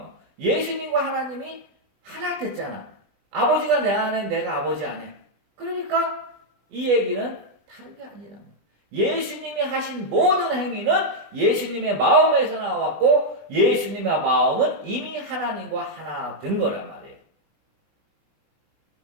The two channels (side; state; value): left; late; 20 ms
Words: 예수님과 하나님이 하나 됐잖아. 아버지가 내 안에 내가 아버지 안에. 그러니까 이 얘기는 다른 게 아니라 예수님이 하신 모든 행위는 예수님의 마음에서 나왔고 예수님의 마음은 이미 하나님과 하나 된 거란 말이에요.